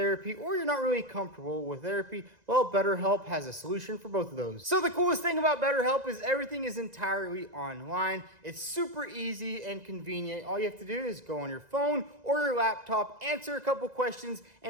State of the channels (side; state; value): left; late; 2.0 ms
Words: or you're not really comfortable with therapy. Well, BetterHelp has a solution for both of those. So the coolest thing about BetterHelp is everything is entirely online. It's super easy and convenient. All you have to do is go on your phone or your laptop, answer a couple questions,